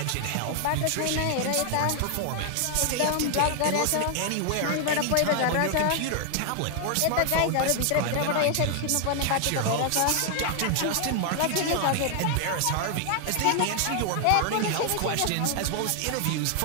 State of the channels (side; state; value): both; different; correlation 0.00